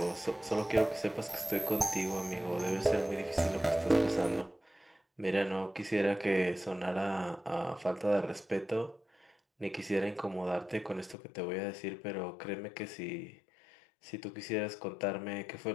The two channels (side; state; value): right; drops out; at 11.2 s